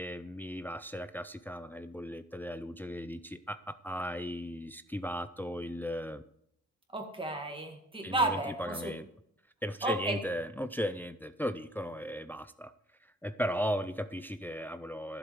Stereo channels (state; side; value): normal; both; correlation 0.58